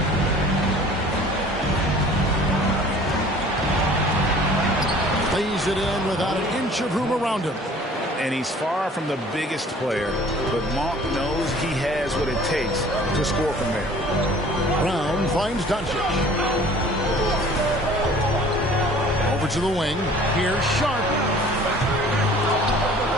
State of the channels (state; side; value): normal; both; correlation 0.49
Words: Plays it in without an inch of room around him. And he's far from the biggest player, but Monk knows he has what it takes to score from there. Brown finds Doncic. Over to the wing. Here's Sharp.